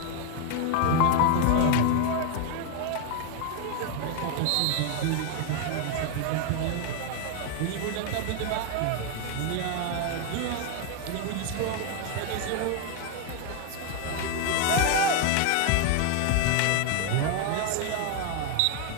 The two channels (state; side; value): different; both; correlation 0.00